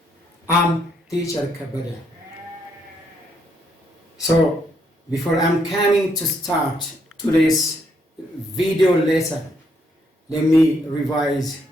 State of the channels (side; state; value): both; normal; correlation 0.73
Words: I'm teacher Kabada. So before I'm coming to start today's video lesson, let me revise